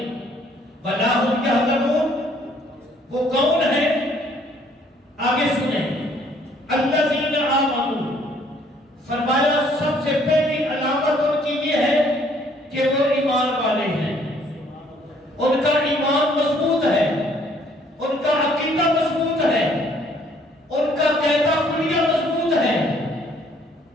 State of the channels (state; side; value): normal; both; correlation 0.62